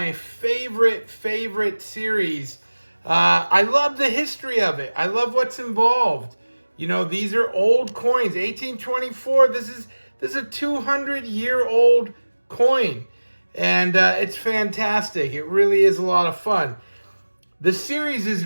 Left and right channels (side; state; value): both; inverted; correlation -1.00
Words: favorite series. I love the history of it. I love what's involved. You know, these are old coins. 1824, this is a 200-year-old coin. And it's fantastic. It really is a lot of fun. The series is